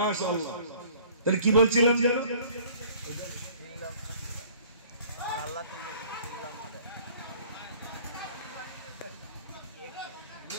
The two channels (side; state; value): both; inverted; correlation -0.53